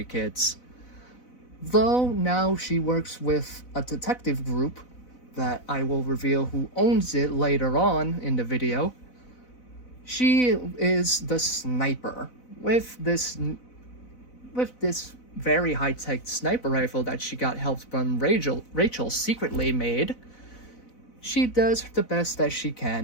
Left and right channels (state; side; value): late; right; 4.0 ms